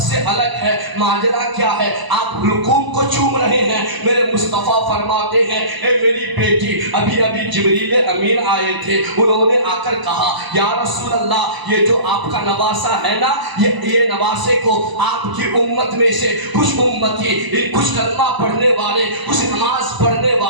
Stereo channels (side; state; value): left; late; 1.0 ms